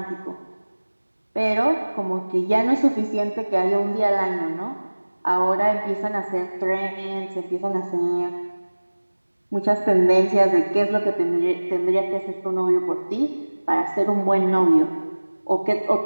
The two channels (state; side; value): inverted; both; correlation -1.00